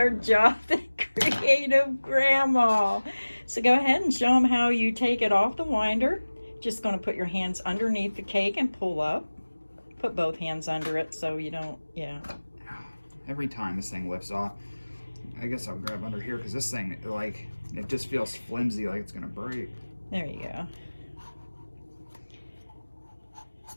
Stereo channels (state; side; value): inverted; both; correlation -1.00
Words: job than Creative Grandma. So go ahead and show them how you take it off the winder. Just going to put your hands underneath the cake and pull up. Put both hands under it so you don't, yeah. Every time this thing lifts off, I guess I'll grab under here because this thing, like, it just feels flimsy, like it's going to break. There you go.